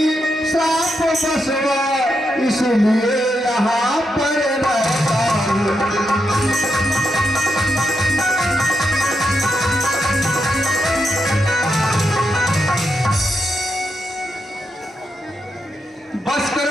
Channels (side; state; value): both; normal; correlation 0.84